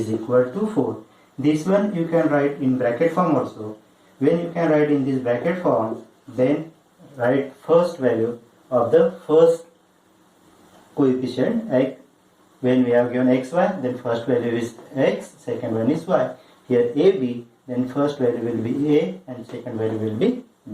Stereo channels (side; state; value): both; identical; correlation 1.00